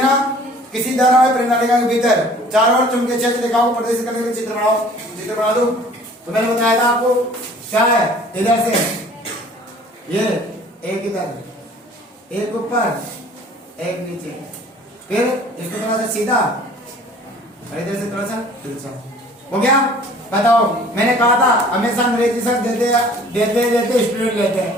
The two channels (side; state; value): both; normal; correlation 0.51